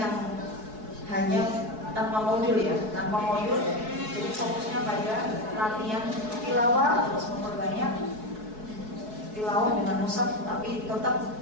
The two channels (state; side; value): late; left; 4.7 ms